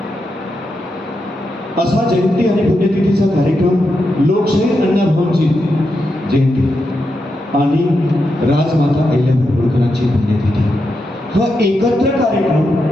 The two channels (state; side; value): normal; both; correlation 0.85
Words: असा जयंती आणि पुण्यतिथीचा कार्यक्रम लोकशाहीर अण्णाभाऊंची जयंती आणि राजमाता अहिल्याबाई होळकरांची पुण्यतिथी हा एकत्र